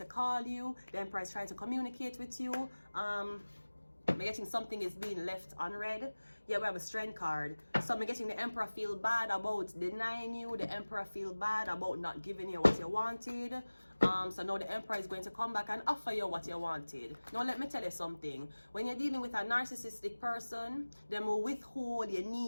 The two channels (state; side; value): inverted; both; correlation -1.00